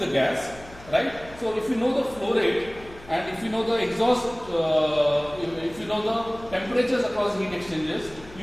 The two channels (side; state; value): left; noise; hum, 20 dB below the sound